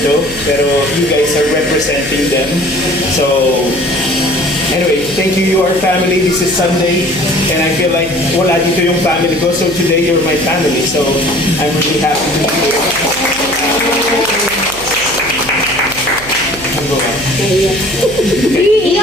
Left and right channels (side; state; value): right; noise; hum, 17 dB below the sound